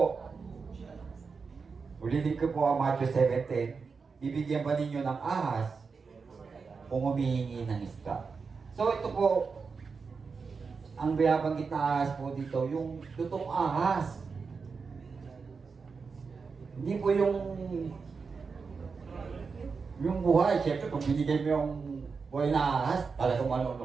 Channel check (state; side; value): quieter; left; 5.1 dB